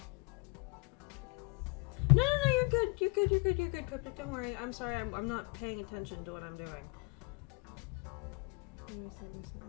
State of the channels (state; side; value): quieter; right; 31.5 dB